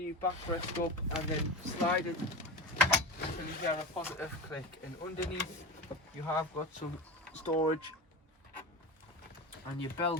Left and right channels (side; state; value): both; normal; correlation 0.26